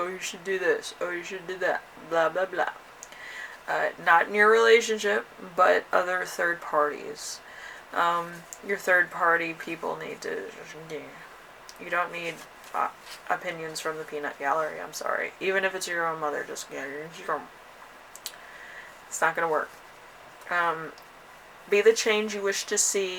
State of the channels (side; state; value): both; identical; correlation 1.00